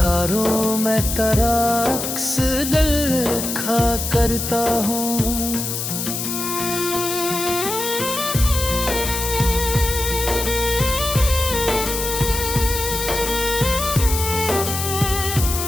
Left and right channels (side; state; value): left; noise; hiss, 4 dB below the sound